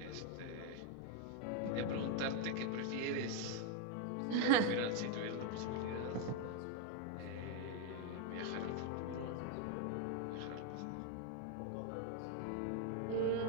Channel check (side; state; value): both; different; correlation 0.01